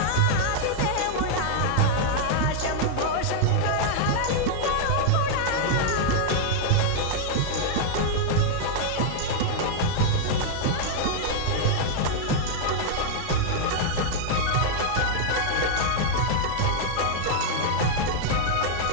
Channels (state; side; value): different; both; correlation -0.01